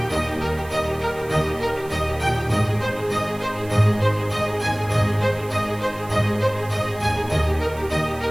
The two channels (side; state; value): right; noise; hiss, 21 dB below the sound